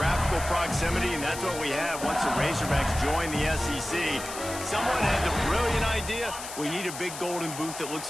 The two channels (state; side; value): noise; left; hiss, 10 dB below the sound